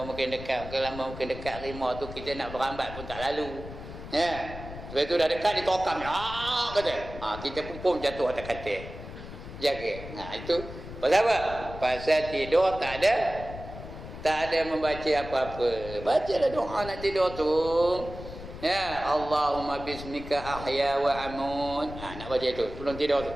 makin dekat, makin lama makin dekat rimah tu, kita nak berambat pun tak lalu. Ya. Lepas itu dah dekat ditokam. Kata. Kita pun jatuh atas katil. Jaga. Itu pasal apa? Pasal tidur tak ada membaca apa-apa. Bacalah doa nak tidur tu. Ya, Allahumma bismika ahya wa amut. Nak baca itu sebelum tidur tu.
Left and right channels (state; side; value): noise; left; rumble, 12 dB below the sound